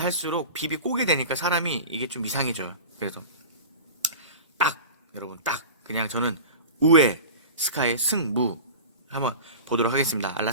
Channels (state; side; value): inverted; both; correlation -0.33